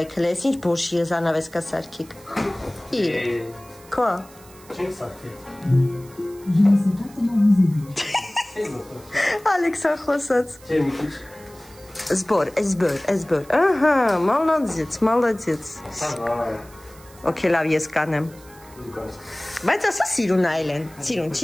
հլե, ես ինչ բոշի զանավեսկա սարքիկ։ Իր, կա։ Չենք սարքել։ Ալեքսա խոսած։ Չէ, մի քիչ։ Զբոր, ահա, մալադեց։ Okay, լավ, ես կանեմ։ Բայց ասա սիրուն այլ են, սիրուն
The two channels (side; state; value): right; noise; hiss, 24 dB below the sound